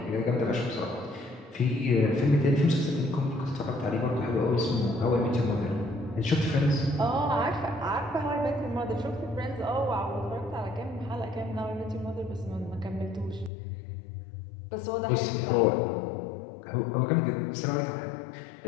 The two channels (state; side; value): drops out; right; at 13.5 s